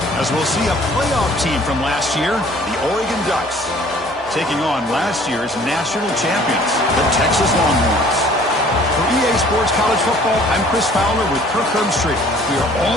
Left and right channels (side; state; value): both; normal; correlation 0.54